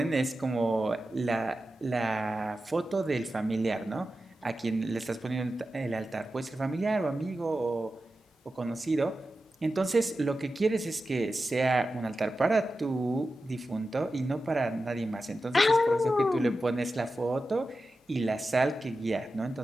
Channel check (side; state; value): both; normal; correlation 0.92